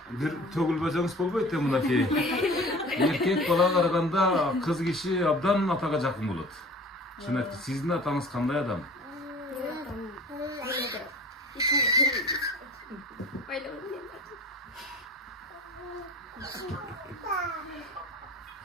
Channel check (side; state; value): both; normal; correlation 0.43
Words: bir tөгülböjеңiz bolboyt da mınaki. Erkek bala karaganda kız kişi abdan ataga jakın bolot. Şunakti, sizin atаңыз kандай adam?